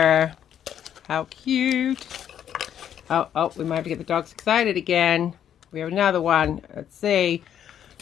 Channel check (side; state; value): right; quieter; 9.7 dB